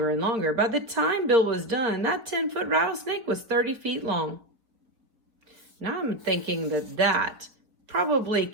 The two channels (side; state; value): left; late; 4.7 ms